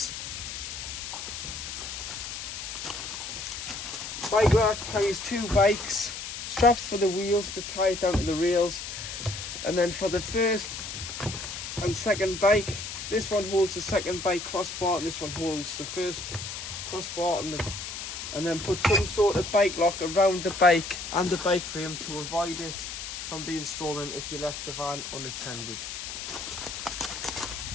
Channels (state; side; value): noise; left; hiss, 7 dB below the sound